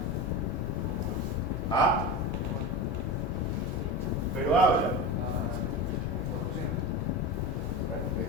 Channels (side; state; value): both; normal; correlation 0.25